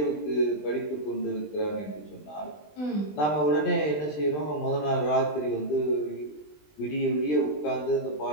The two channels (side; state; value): right; late; 20 ms